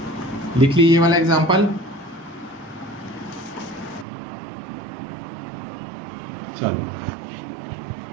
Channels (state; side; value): drops out; left; at 4.0 s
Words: लिख ली ये वाला एग्जांपल। चलो